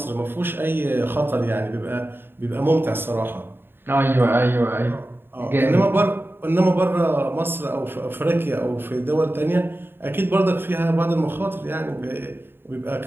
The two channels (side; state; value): left; late; 0.10 ms